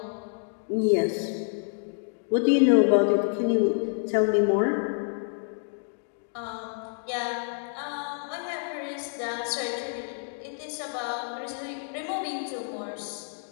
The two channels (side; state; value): right; silent; digital silence